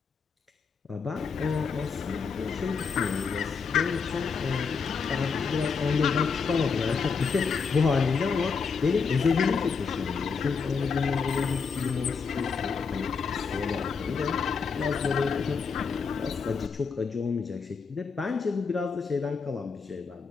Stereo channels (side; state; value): right; quieter; 5.4 dB